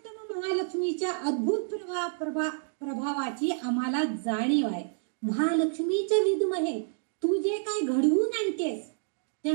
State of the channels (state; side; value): silent; left; digital silence